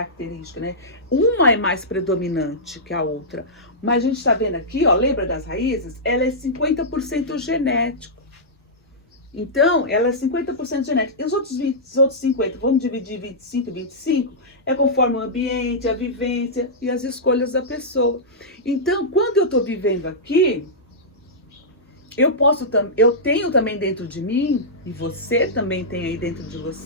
né? Uma é mais predominante que a outra. Mas a gente está vendo aqui, ó, lembra das raízes? Ela é 50% genético. Então, ela é 50% genética. E os outros 50%, vamos dividir 25, é conforme o ambiente, a vivência e as escolhas da pessoa. Então, quando eu estou vivendo aqui, eu tenho também dentro de mim, e você também tem aí dentro de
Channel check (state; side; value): normal; both; correlation -0.13